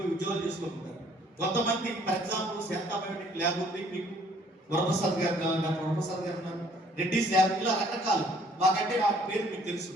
ఉద్యోగాలు చేసుకుంటారు. కొంతమంది for example Shantha biotic lab ఉంది, మీకు వరప్రసాద్ గారు ఉన్నారు, రెడ్డిస్ ల్యాబ్, ఇలా రకరకాలు. మాకంటే ఆ పేరు మీకు తెలుసు.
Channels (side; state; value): both; normal; correlation 0.60